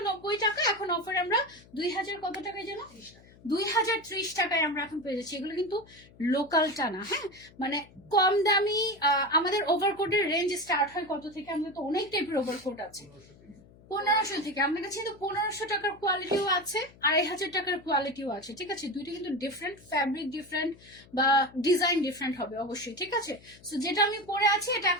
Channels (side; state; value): left; noise; hum, 24 dB below the sound